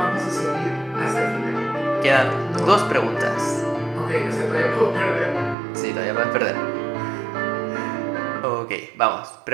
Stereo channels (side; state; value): left; drops out; at 5.6 s